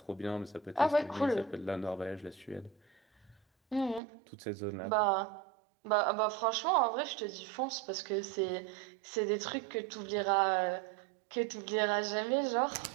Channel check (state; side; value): drops out; left; at 4.0 s